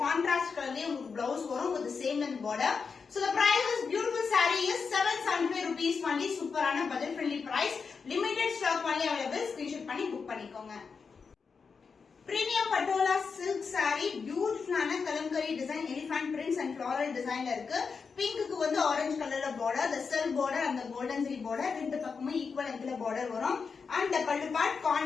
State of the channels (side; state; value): right; quieter; 5.4 dB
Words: contrast color le உங்களுக்கு blouse வரும் with the same length border. So the price of this beautiful saree is 775 rupees only. சூப்பரான budget friendly price, limited stock only available. screenshot பண்ணி book பண்ணிக்கோங்க. Premium patola silk sorry, பியூட்டிஃபுல்லான kalamkari design, elephant prints and floral டிசைன்ல இருக்கு. பிங்க்குக்கு orange கலர்ல border, the silk border and the golden zari border, ரெண்டு பக்கமும் equal லென்த்ல border வரும். and the pallu part